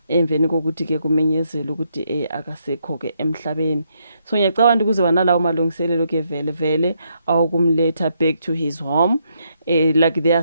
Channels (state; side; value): inverted; both; correlation -0.76